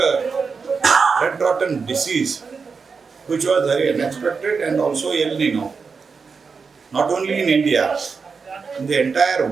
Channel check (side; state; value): left; quieter; 5.2 dB